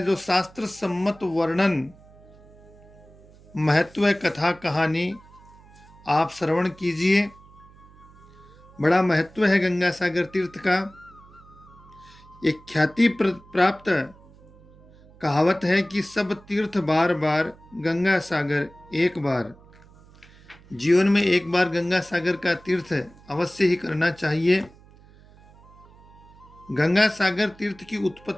शास्त्र सम्मत वर्णन, महत्व कथा कहानी आप श्रवण कीजिए। बड़ा महत्व है गंगा सागर तीर्थ का। एक ख्याति प्राप्त कहावत है कि सब तीर्थ बार बार, गंगा सागर एक बार। जीवन में एक बार गंगा सागर का तीर्थ अवश्य ही करना चाहिए। गंगा सागर तीर्थ की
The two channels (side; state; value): right; noise; hum, 24 dB below the sound